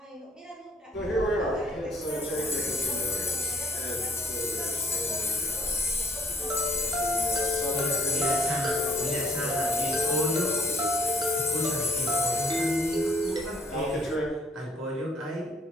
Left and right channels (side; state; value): both; normal; correlation 0.59